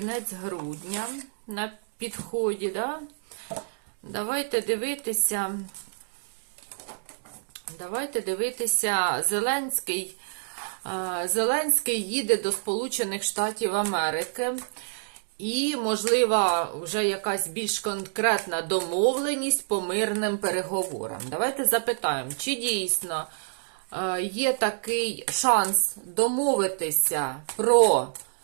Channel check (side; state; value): left; silent; digital silence